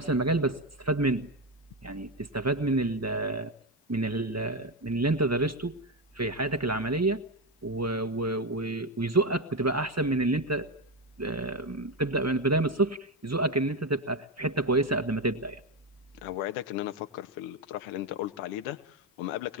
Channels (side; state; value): both; normal; correlation 0.13